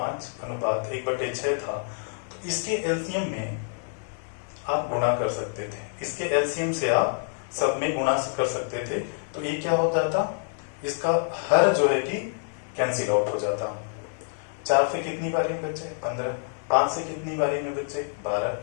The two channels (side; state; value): right; silent; 57 dB below the other